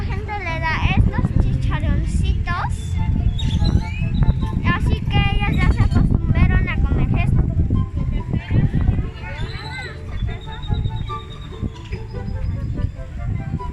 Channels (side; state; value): both; identical; correlation 1.00